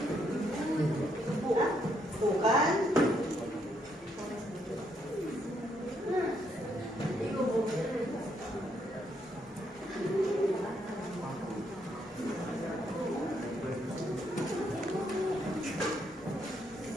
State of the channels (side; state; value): both; normal; correlation 0.74